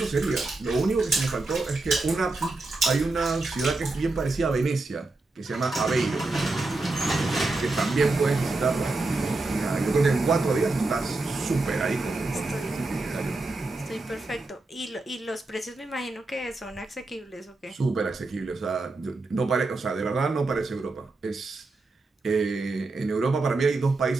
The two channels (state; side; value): quieter; left; 3.3 dB